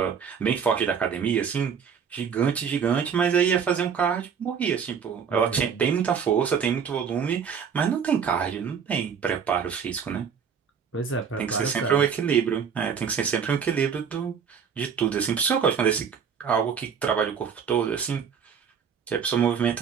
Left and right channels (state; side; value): quieter; left; 7.0 dB